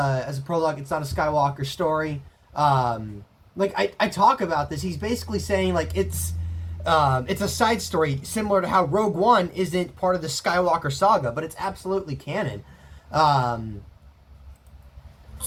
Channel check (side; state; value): both; identical; correlation 1.00